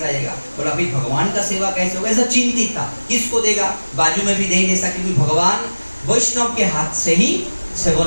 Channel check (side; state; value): both; inverted; correlation -1.00